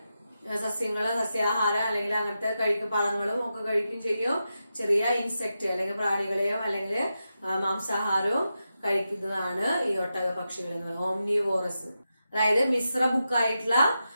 സസ്യാഹാരം അല്ലെങ്കിൽ അങ്ങനത്തെ പഴങ്ങളും ഒക്കെ കഴിക്കും ചെയ്യും. ചെറിയ ഇൻസെക്ട് അല്ലെങ്കിൽ പ്രാണികളെയും അല്ലെങ്കിൽ മാംസാഹാരവും കഴിക്കുന്നതാണ് ഈ ഒട്ടക പക്ഷികൾ എന്ന് പറയുന്നത്. ഓംനിവോറസ്, അതായത് മിശ്ര ബുക്കായിട്ടുള്ള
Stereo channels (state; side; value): inverted; both; correlation -0.89